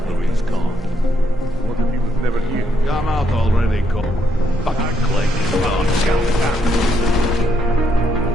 the window. Gone. What if he was never here? Come out already, Cole. Fucking Clay. Oh, count it out.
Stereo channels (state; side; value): normal; both; correlation 0.76